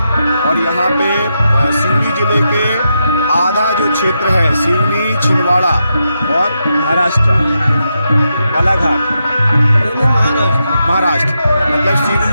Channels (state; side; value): inverted; both; correlation -0.85